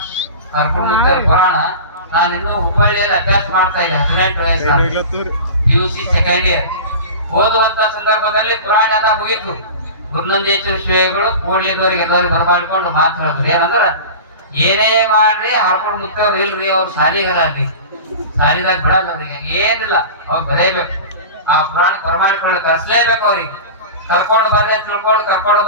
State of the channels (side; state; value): both; inverted; correlation -0.32